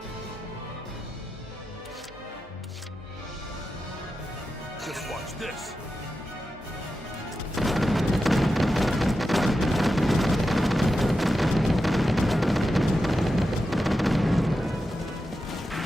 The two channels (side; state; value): both; normal; correlation 0.90